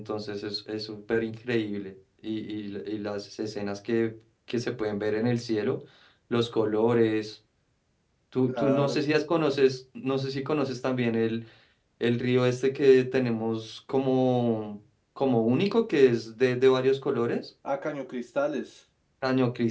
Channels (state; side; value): identical; both; correlation 1.00